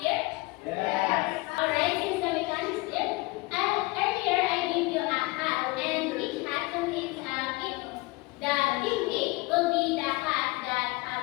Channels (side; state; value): right; quieter; 23.3 dB